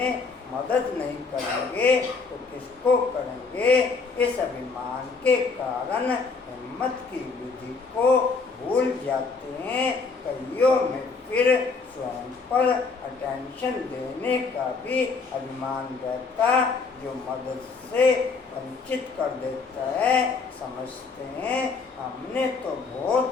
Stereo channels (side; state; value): right; quieter; 4.5 dB